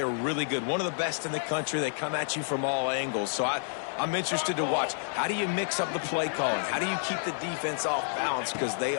really good. One of the best in the country. They come at you from all angles. So I'm interested to watch. How do you mix up the play calling? How do you keep the defense off balance? Because they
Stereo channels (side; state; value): right; silent; digital silence